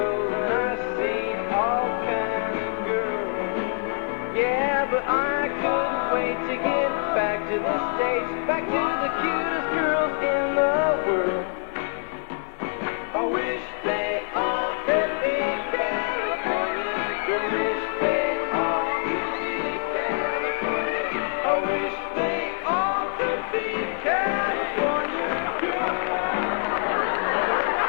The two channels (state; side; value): silent; right; 62 dB below the other